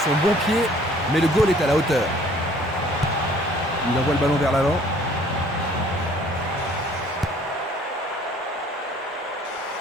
son bon pied, mais le goal est à la hauteur. Il envoie le ballon vers l'avant.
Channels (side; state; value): both; normal; correlation 0.56